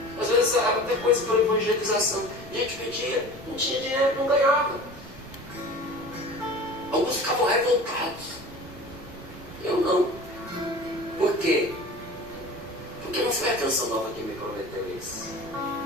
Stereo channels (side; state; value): right; noise; rumble, 19 dB below the sound